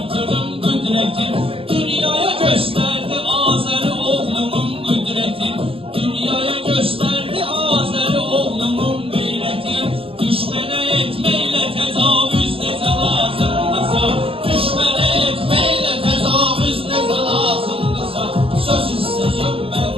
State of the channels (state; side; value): late; left; 0.27 ms